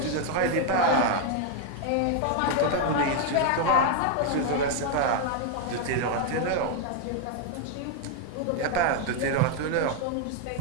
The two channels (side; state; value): both; different; correlation 0.01